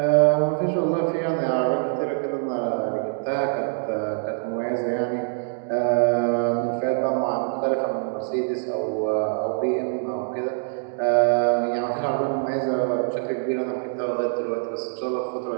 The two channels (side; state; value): left; silent; digital silence